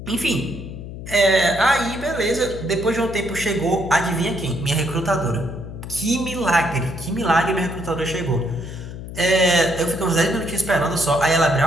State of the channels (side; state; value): left; noise; hum, 10 dB below the sound